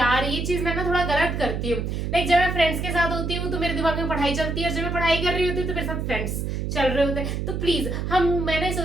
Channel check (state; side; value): noise; right; hum, 2 dB below the sound